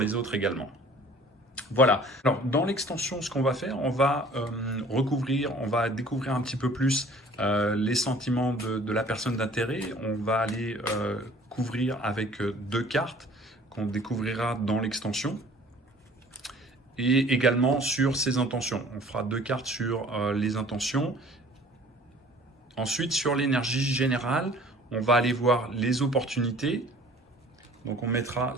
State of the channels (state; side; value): normal; both; correlation 0.51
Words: autres également. Voilà. Alors, dans l'extension, ce qu'on va faire, on va on va découvrir un petit peu plus les sentiments de la personne d'intérêt. On va aller couvrir avec 2 cartes qu'on découvrira dans l'extension, et également sur ses intentions. On fera 2 cartes sur les intentions. Ensuite, sur l'énergie générale, on va aller voir les opportunités, Donc on mettra